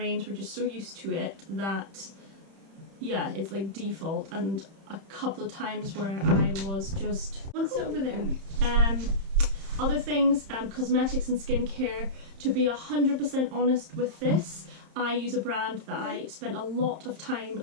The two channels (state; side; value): late; left; 31 ms